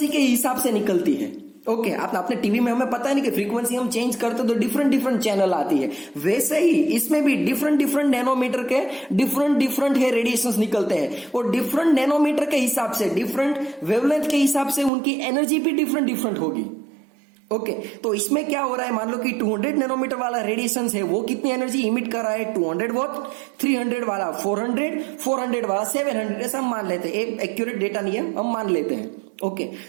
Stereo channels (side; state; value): left; drops out; at 14.9 s